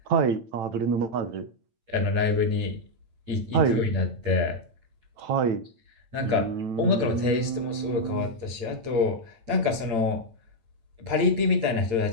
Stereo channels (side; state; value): left; late; 8.9 ms